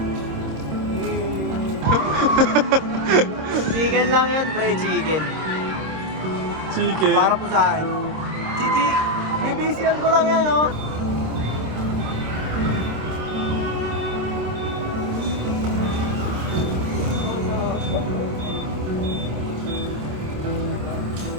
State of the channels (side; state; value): left; late; 26 ms